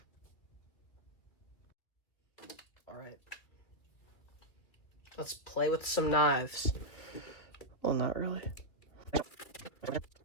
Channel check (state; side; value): late; right; 2.6 ms